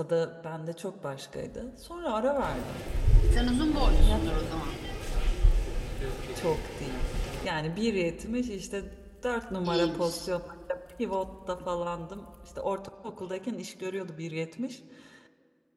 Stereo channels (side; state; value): both; identical; correlation 1.00